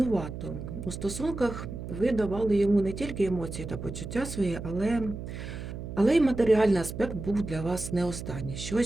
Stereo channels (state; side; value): noise; right; hum, 8 dB below the sound